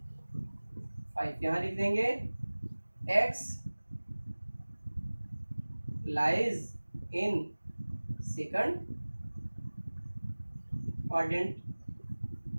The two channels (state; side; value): inverted; both; correlation -1.00